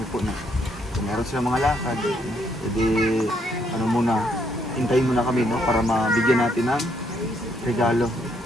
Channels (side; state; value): both; normal; correlation 0.72